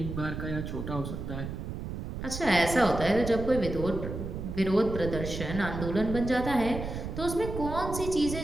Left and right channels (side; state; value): right; noise; rumble, 6 dB below the sound